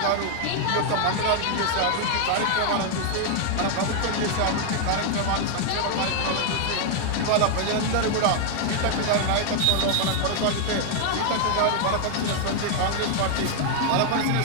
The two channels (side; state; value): both; different; correlation 0.00